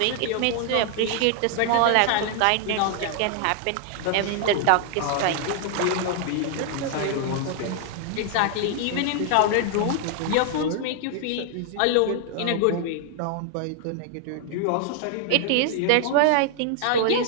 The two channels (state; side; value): different; both; correlation 0.00